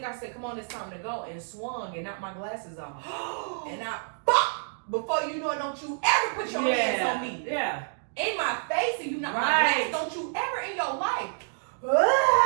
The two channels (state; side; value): silent; left; digital silence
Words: I said, "Come on, it's time to go," and swung and knocked my glasses off. And I, before you know it, don't you ever put your hands on me. Yeah. In my face, and you knock my glasses. Don't you ever in your life.